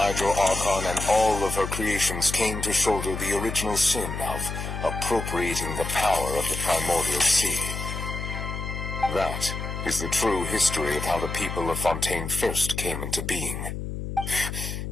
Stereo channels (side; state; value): left; noise; hum, 6 dB below the sound